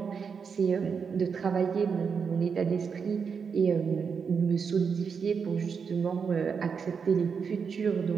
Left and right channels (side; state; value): left; quieter; 6.1 dB